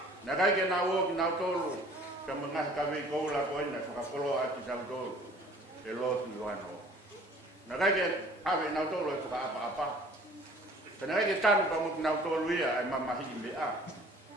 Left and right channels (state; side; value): normal; both; correlation 0.51